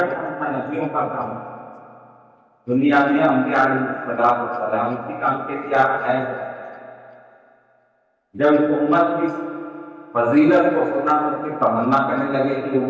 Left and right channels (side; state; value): both; identical; correlation 1.00